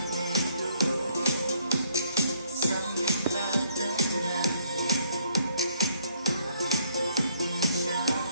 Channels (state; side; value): inverted; both; correlation -0.66